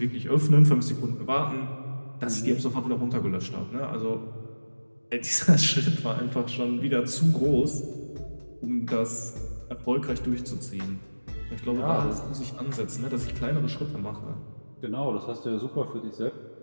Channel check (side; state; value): both; inverted; correlation -1.00